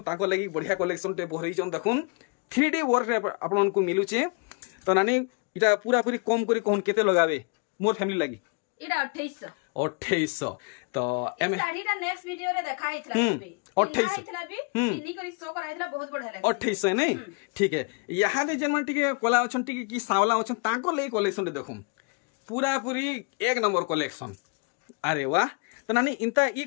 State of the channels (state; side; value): quieter; right; 34.0 dB